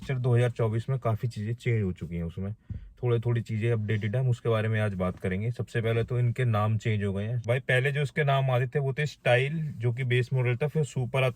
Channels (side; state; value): both; identical; correlation 1.00